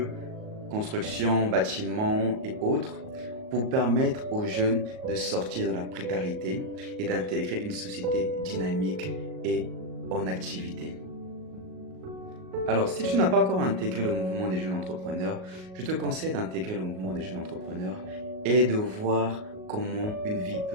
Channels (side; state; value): left; late; 38 ms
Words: construction, bâtiment et autres, pour permettre aux jeunes de sortir de la précarité et d'intégrer une société dynamique et en activité. Alors, si tu n'as pas encore intégré le mouvement des jeunes entrepreneurs, je te conseille d'intégrer le mouvement des jeunes entrepreneurs et de voir comment une vie